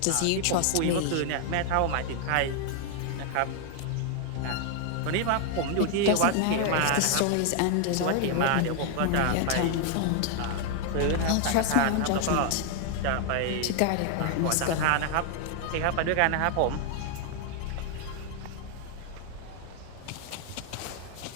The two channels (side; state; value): both; different; correlation 0.00